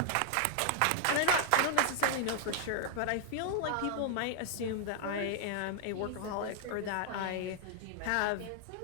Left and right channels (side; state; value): both; different; correlation 0.00